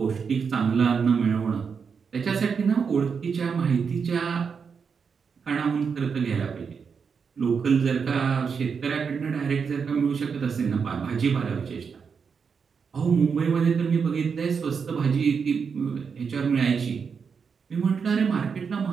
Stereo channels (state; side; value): quieter; left; 6.0 dB